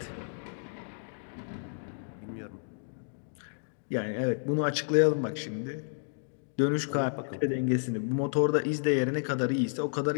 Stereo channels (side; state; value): right; silent; digital silence